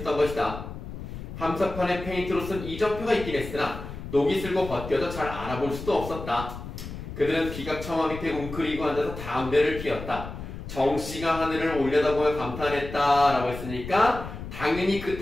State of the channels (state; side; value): noise; left; rumble, 10 dB below the sound